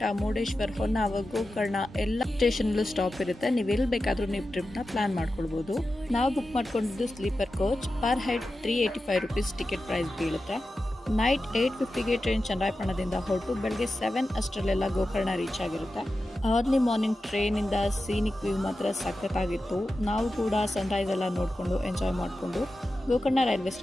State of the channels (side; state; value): both; normal; correlation 0.92